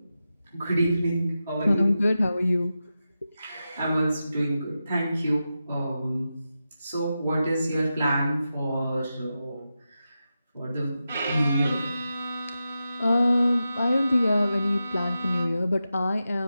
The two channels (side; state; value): both; inverted; correlation -0.90